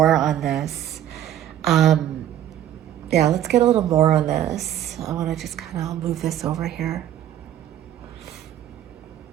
on this. Yeah, let's get a little more on this. I want to just kind of move this over here.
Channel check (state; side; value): quieter; left; 11.4 dB